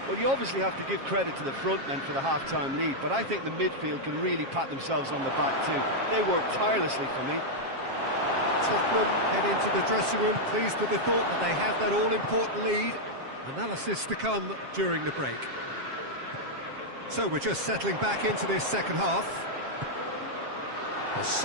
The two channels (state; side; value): late; left; 7.4 ms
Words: Well, you obviously have to give credit to the front men for the half-time lead, but I think the midfield can really pat themselves on the back too. They worked tirelessly for me. Tottenham head into the dressing room pleased with the thought that they have that all-important lead. Analysis to come during the break. So we're just settling back into this second half. A